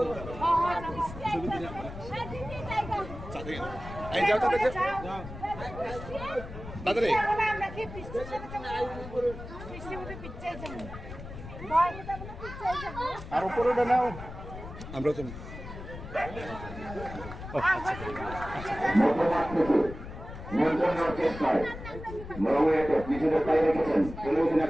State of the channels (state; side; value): noise; left; rumble, 11 dB below the sound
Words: ছবি এই যাও তাদের তাদের আর উপরে নাও আমরা তো নিয়ন্ত্রণের চেষ্টায় মরুয়েতে নিজেদের পায়ে রেখেছেন, টেলিভিশনের